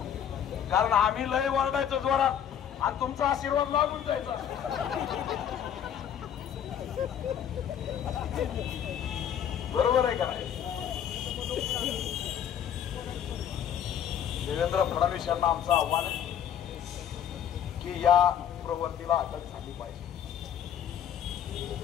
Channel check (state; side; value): quieter; right; 9.3 dB